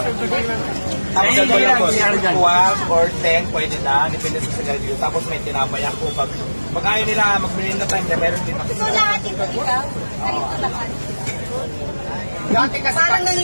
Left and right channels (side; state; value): both; inverted; correlation -1.00